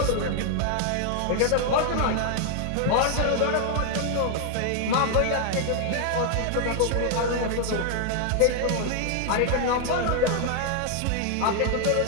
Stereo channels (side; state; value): both; different; correlation 0.00